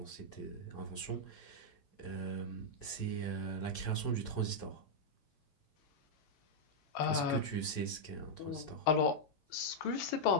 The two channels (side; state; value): right; late; 7.0 ms